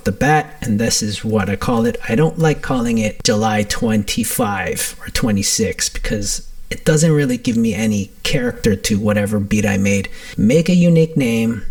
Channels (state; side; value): identical; both; correlation 1.00